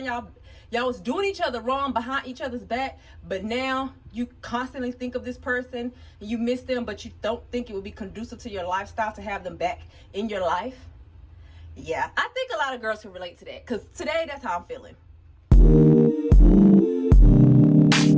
y'all was doing each other wrong behind each other's back, but now you constantly think of this person and you miss them, but you don't think it would be conducive to your lifestyle to have them back in your life? Yeah, I think a lot of girls can relate to that, because today that's how I'm feeling.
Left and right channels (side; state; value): both; identical; correlation 1.00